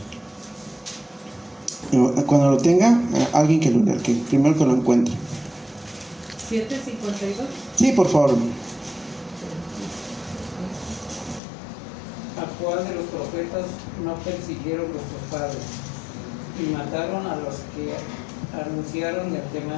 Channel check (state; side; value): drops out; right; at 11.4 s